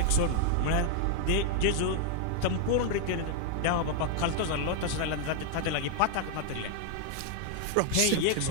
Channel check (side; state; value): both; different; correlation 0.00